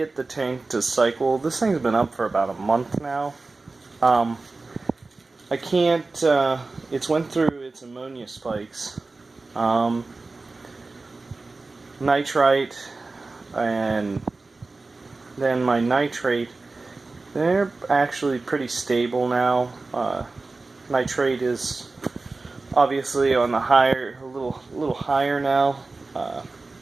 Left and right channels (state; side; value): quieter; left; 3.6 dB